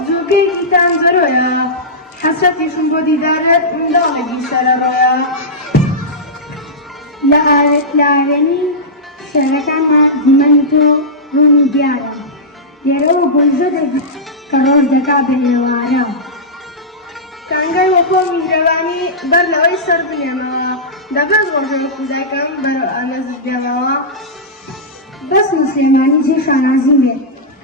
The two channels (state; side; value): normal; both; correlation -0.13